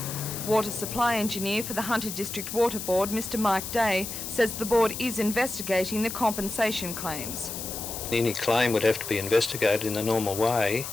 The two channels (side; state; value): left; noise; hiss, 7 dB below the sound